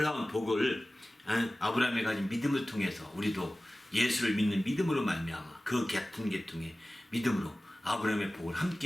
복을 아브라함이 가진 믿음을 통해서 우리도 예수를 믿는 믿음으로 말미암아 그 같은 계통의 믿음으로 아브라함의 복을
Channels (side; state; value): both; normal; correlation 0.97